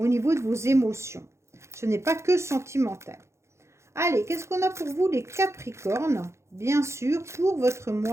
niveau de vos émotions. Ce n'est pas que sentimental. Allez, qu'est-ce qu'on a pour vous les Capricornes? Bien sûr, pour votre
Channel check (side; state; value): left; late; 0.13 ms